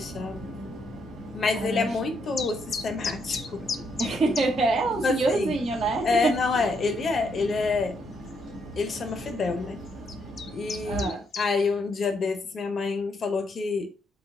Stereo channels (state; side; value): normal; both; correlation 0.76